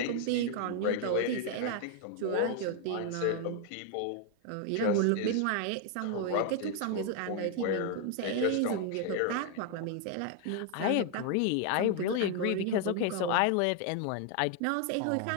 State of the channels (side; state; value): both; different; correlation 0.00